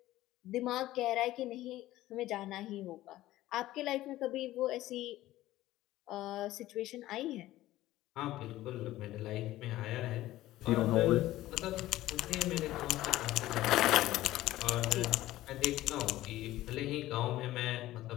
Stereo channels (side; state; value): right; quieter; 15.6 dB